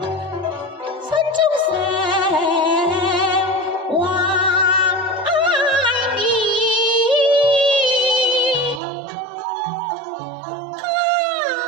心中常懷念。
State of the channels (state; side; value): drops out; left; at 8.8 s